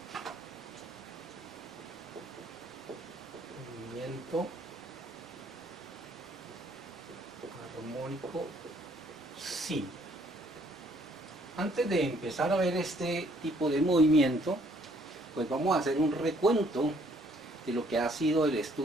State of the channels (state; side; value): normal; both; correlation 0.64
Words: Movimiento armónico simple. Antes de empezar a ver este tipo de movimiento, pues vamos a hacer un recuento de lo que ha sido el